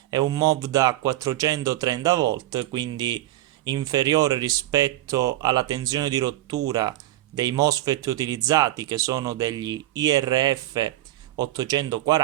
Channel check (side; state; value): left; quieter; 15.3 dB